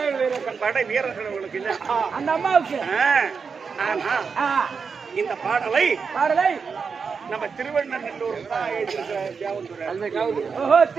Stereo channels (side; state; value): left; quieter; 5.6 dB